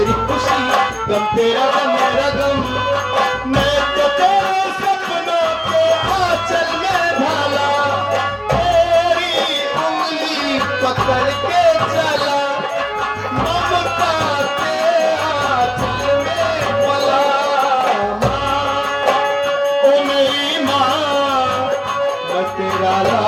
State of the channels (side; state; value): both; identical; correlation 1.00